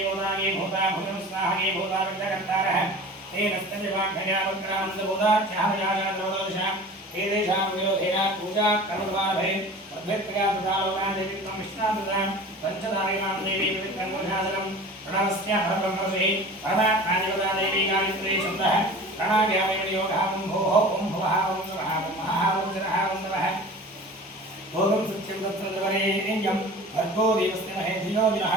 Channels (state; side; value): normal; both; correlation 0.39